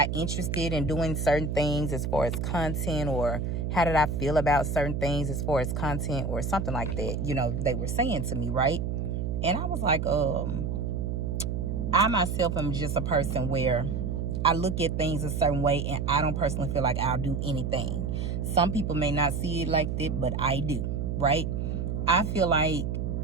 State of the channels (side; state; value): right; noise; hum, 1 dB below the sound